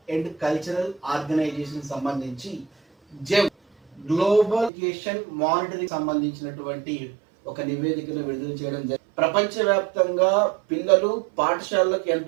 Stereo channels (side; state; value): left; drops out; at 4.7 s